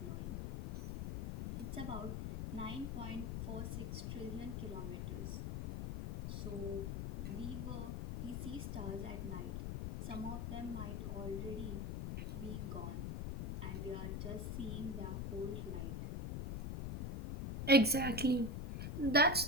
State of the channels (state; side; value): noise; left; rumble, 3 dB below the sound